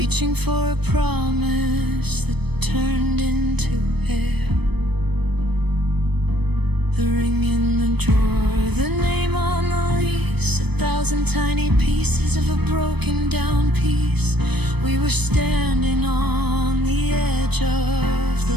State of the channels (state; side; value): late; left; 0.98 ms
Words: for a promise that turned into air. The ring in the drawer, the name on the lease, 1,000 tiny pieces of a broken down piece. We were standing on the edge of